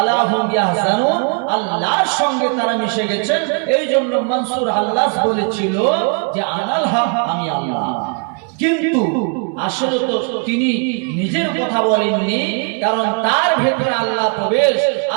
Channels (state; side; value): quieter; left; 38.7 dB